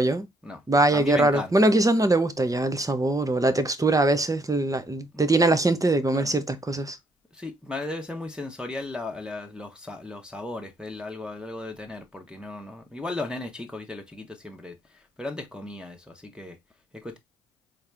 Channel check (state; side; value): normal; both; correlation 0.70